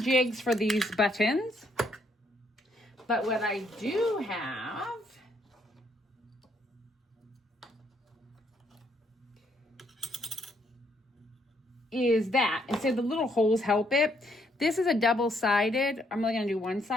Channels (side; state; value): both; normal; correlation 0.71